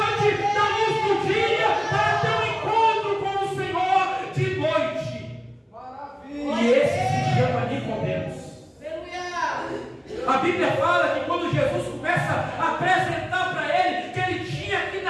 da luz do dia para ter um encontro com o Senhor de noite. Maravilha. E esse se chama Nicodemos. A Bíblia fala que quando Jesus começa a apresentar para ele que ele tinha que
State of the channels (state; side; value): identical; both; correlation 1.00